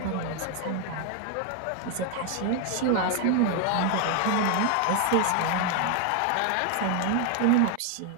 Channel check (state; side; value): different; both; correlation 0.01